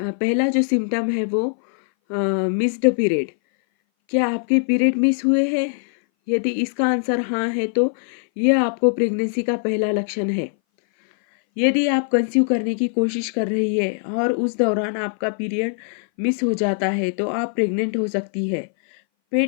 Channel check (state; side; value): silent; right; 60 dB below the other